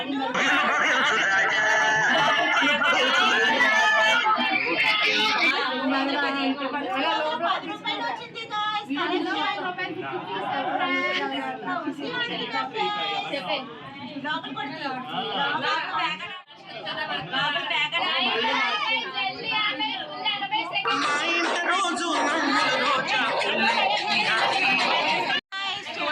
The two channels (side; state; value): both; identical; correlation 1.00